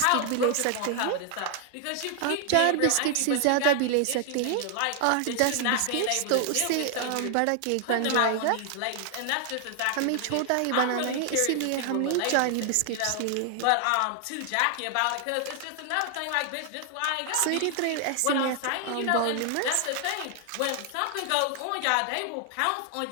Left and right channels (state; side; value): different; both; correlation 0.00